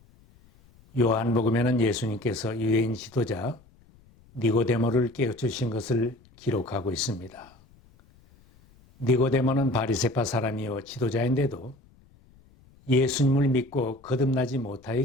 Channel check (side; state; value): left; noise; rumble, 28 dB below the sound